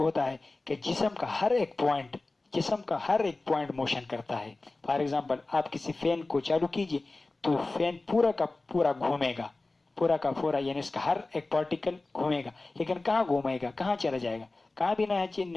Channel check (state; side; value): quieter; right; 3.2 dB